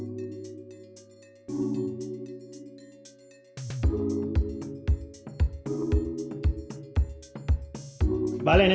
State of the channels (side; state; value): both; identical; correlation 1.00